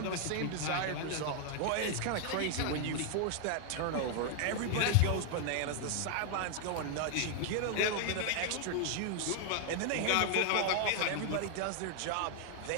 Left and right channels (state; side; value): different; both; correlation 0.00